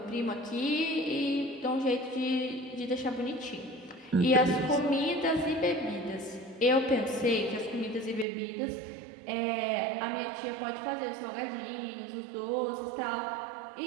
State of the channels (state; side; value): drops out; left; at 8.2 s